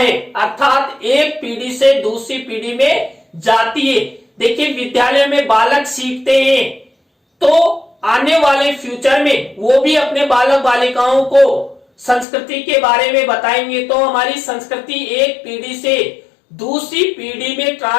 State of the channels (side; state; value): right; drops out; at 12.2 s